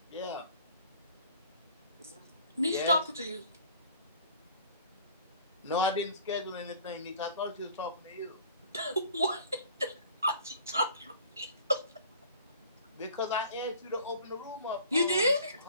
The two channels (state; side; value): inverted; both; correlation -0.49